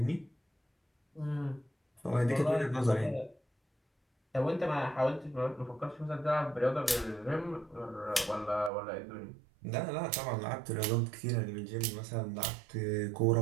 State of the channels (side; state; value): left; drops out; at 8.7 s